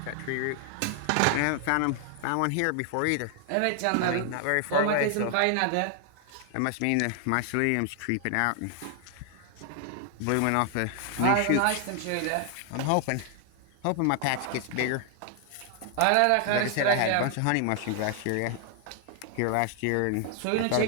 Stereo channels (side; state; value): both; different; correlation 0.00